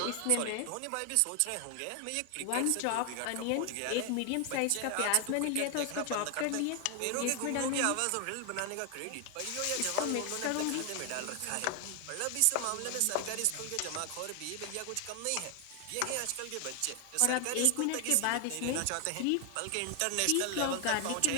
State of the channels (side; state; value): both; different; correlation 0.00